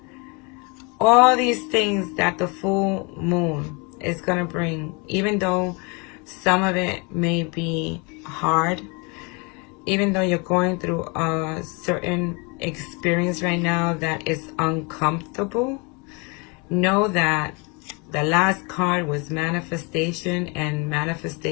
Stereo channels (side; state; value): right; quieter; 30.9 dB